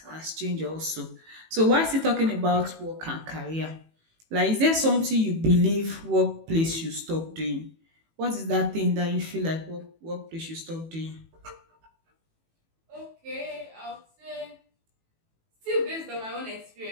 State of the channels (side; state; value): left; late; 18 ms